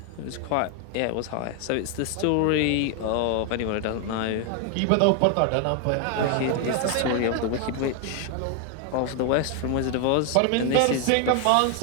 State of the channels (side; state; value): both; different; correlation 0.01